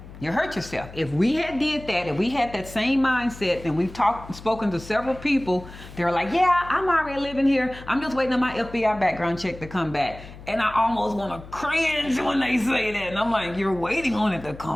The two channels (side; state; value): left; noise; hum, 16 dB below the sound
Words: You'll hurt yourself. If we had did that, if we had that same mindset, and we've spoken to several people, they're like, yeah, I'm already living here. I'm just waiting on my FBI background check to come back. And I almost want to cringe when they say that. And I'm like, you're waiting on it to